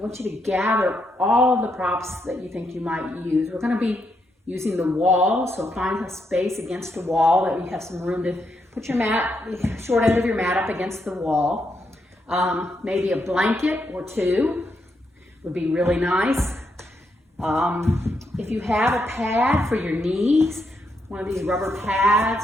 you to gather all of the props that you think you might use. We're going to be using the wall, so find a space against the wall that you have some room to put your mat, short end of your mat up against the wall. Maybe a blanket or two would be really nice. If you have a pad for your knees, one of these rubber pads,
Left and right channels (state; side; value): normal; both; correlation 0.80